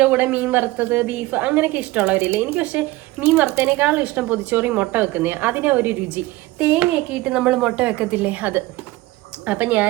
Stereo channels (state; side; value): quieter; left; 19.3 dB